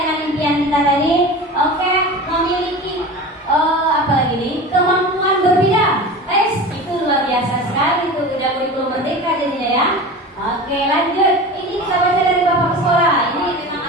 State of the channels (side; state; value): both; normal; correlation 0.32